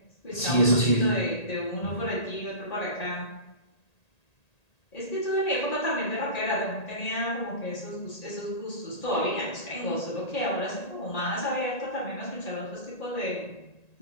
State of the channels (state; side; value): late; right; 1.8 ms